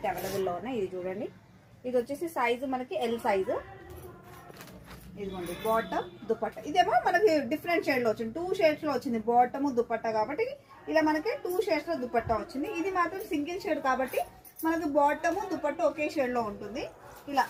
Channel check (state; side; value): identical; both; correlation 1.00